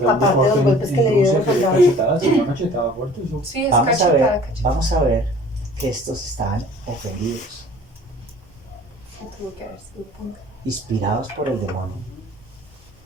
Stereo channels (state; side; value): normal; both; correlation 0.49